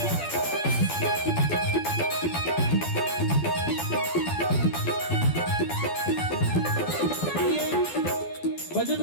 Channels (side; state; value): right; late; 12 ms